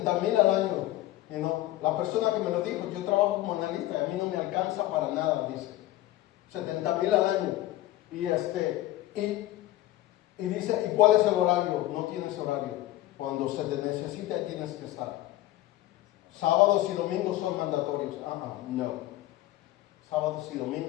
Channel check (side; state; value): right; quieter; 15.6 dB